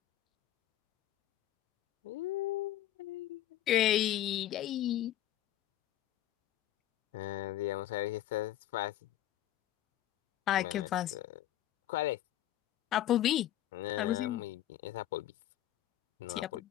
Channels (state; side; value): quieter; right; 13.2 dB